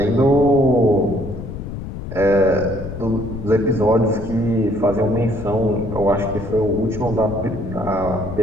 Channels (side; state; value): left; noise; rumble, 9 dB below the sound